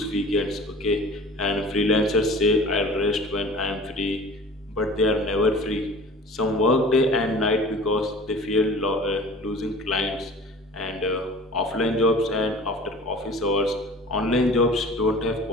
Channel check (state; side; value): normal; both; correlation 0.43